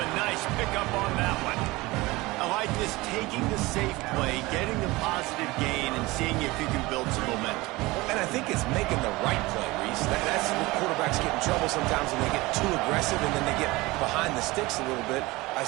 nice pickup on that one. I like this, taking the safe play, getting the positive gain, and seeing if you can build some momentum. And I think it's making the right play, Reese. That's when quarterbacks get in trouble sometimes when they get too aggressive and then they get behind the sticks a little bit. I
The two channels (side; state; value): left; quieter; 21.3 dB